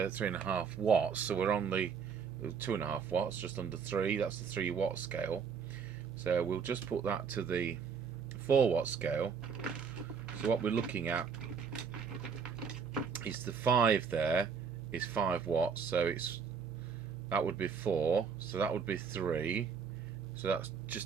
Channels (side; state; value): left; quieter; 6.2 dB